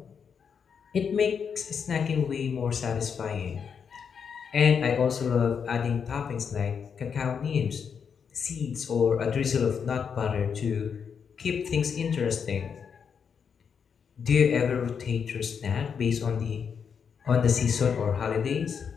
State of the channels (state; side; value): quieter; right; 6.7 dB